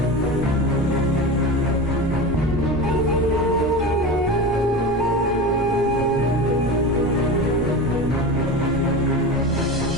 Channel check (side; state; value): both; normal; correlation 0.27